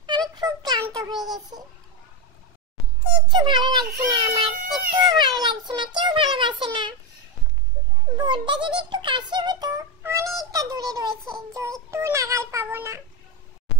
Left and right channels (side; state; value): both; normal; correlation 0.10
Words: আমি খুব ক্লান্ত হয়ে গেছি। কিচ্ছু ভালো লাগছে না আমার, একটুও ভালো লাগছে না, কেউ ভালোবাসে না। বোর্ডটা যদি একটু কাছে হতো, অনেকটা দূরে রয়েছে, যে একটু নাগাল পাবো না।